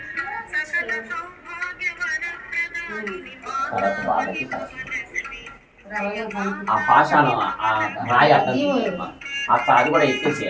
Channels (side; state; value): both; identical; correlation 1.00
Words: తర్వాత బాధకి ఆ పాషాణం ఆ రాయి అర్థం అక్కడ అది కూడా